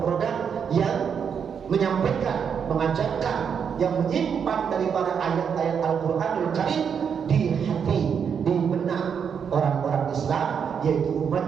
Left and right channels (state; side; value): quieter; left; 7.1 dB